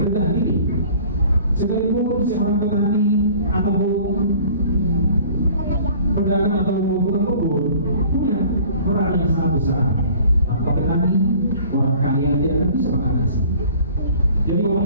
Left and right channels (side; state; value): both; inverted; correlation -0.49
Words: diri. Sekalipun seorang petani atau pedagang atau tukang kebun punya peran yang sangat besar. Tanpa petani, orang kaya tidak akan bisa mengatasi. Jadi